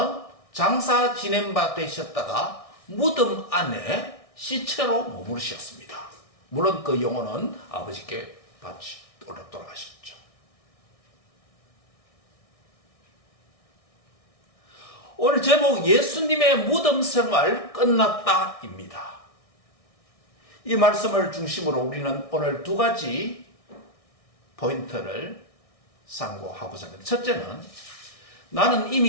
장사 지낸 바 되셨다가 무덤 안에 시체로 머무르셨습니다. 물론 그 영혼은 아버지께 돌아가셨죠. 오늘 제목 예수님의 무덤 생활 끝났다입니다. 이 말씀을 중심으로 우리는 오늘 두 가지 포인트를 상고하고자 합니다. 첫째는 나는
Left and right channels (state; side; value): late; right; 1.6 ms